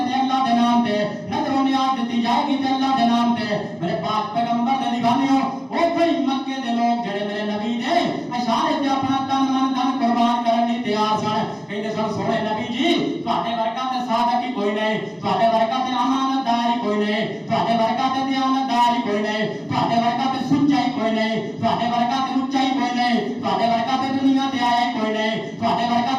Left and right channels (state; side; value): identical; both; correlation 1.00